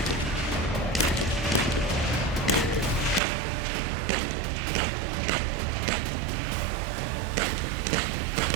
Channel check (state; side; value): drops out; left; at 3.2 s